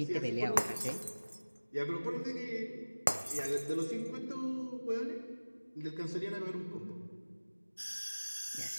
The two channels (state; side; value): inverted; both; correlation -1.00